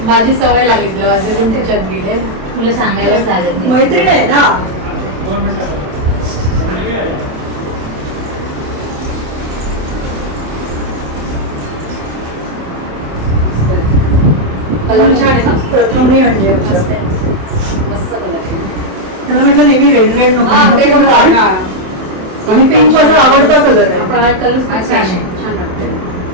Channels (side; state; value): left; late; 27 ms